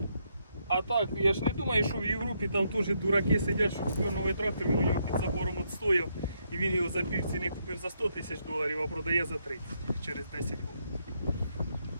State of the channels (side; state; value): both; inverted; correlation -0.77